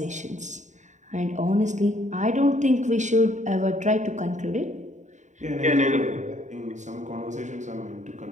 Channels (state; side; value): late; left; 0.35 ms